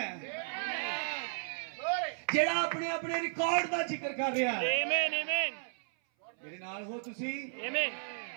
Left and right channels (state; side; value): silent; left; 55 dB below the other